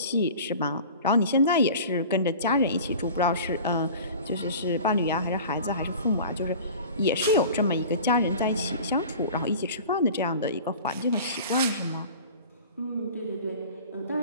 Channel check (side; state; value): both; inverted; correlation -0.40